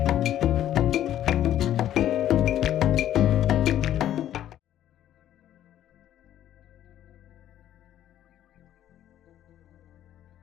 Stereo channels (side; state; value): right; quieter; 11.7 dB